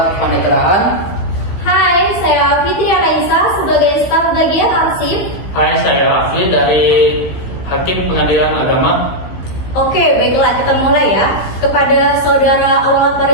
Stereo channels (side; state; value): right; late; 15 ms